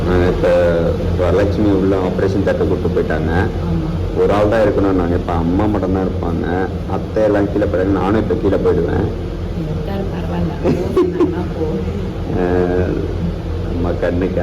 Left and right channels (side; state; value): both; identical; correlation 1.00